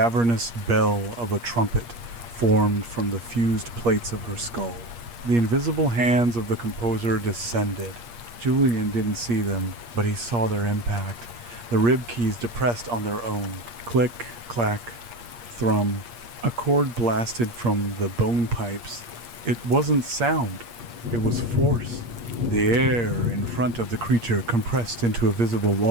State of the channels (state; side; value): late; left; 8.5 ms